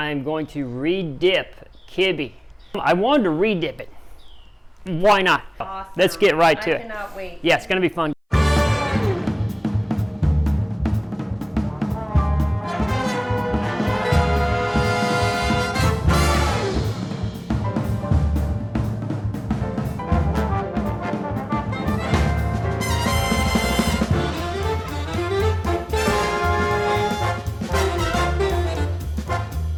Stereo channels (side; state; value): both; identical; correlation 1.00